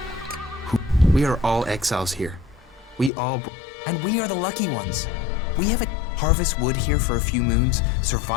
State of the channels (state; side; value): drops out; right; at 3.1 s